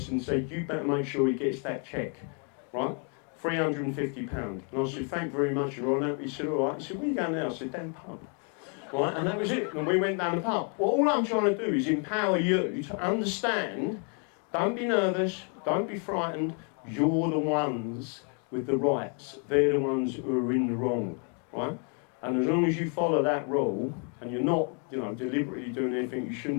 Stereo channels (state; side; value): quieter; right; 40.0 dB